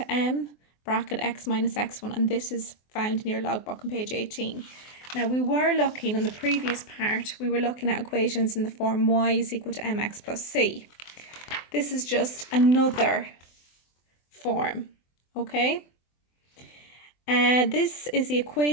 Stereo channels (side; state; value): right; late; 24 ms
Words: m bracket x minus x1, and this is found in your logbook on page 18. Now we were looking in the previous part, we were looking at equations in the form y is equal to mx plus c. This is just another form, okay? This is the